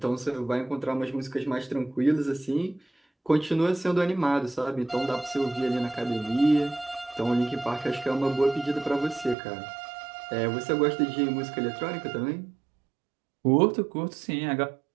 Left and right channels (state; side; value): drops out; left; at 9.3 s